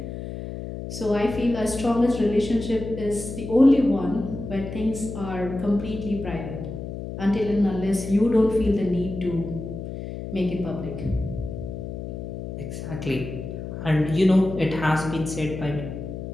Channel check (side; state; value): left; noise; hum, 8 dB below the sound